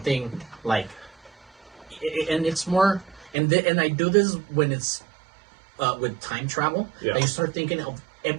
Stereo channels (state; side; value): drops out; left; at 3.3 s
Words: like, and it's more, and I do this when it's with time travel. Yeah. You start thinking of